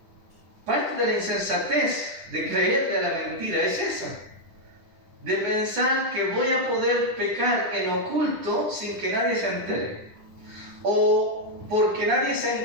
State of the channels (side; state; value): left; late; 10 ms